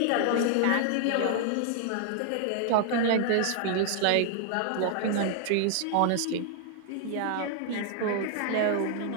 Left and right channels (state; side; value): different; both; correlation 0.00